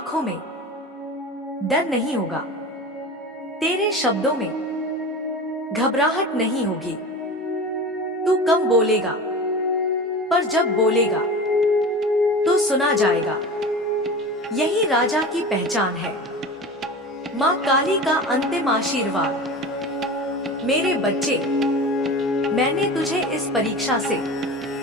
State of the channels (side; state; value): both; normal; correlation 0.32